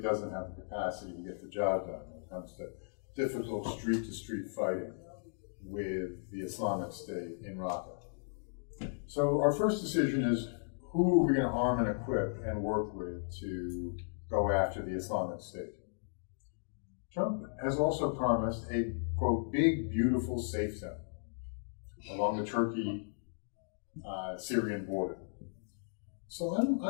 have the capacity to get the job done when it comes to difficult street-to-street fighting with the Islamic State in Raqqa. So our first decision is, who are we going to arm and equip and work with to go after the Islamic State? Trump has also promised a, quote, big, beautiful safe zone along the Turkey-Syrian border. So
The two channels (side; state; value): right; silent; digital silence